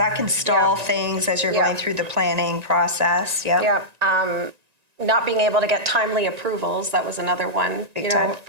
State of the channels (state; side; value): late; left; 1.9 ms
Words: can stall Yeah. things as you're Yeah. going through the planning process. Yeah. Yeah. Not being able to get timely approvals. That was another one, Big time.